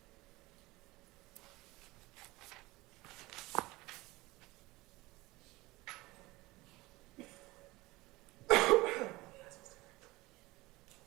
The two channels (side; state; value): left; quieter; 20.8 dB